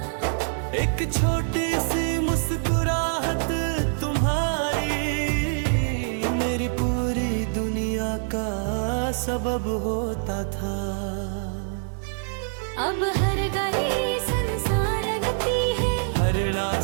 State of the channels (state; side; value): silent; left; digital silence